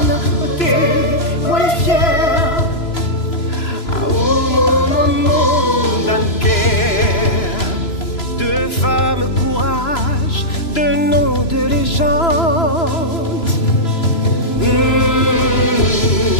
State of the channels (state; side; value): late; right; 3.0 ms